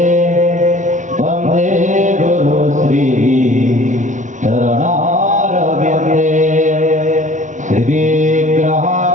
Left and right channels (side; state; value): left; late; 0.36 ms